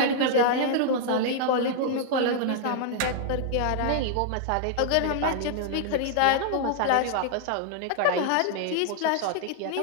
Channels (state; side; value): different; both; correlation -0.01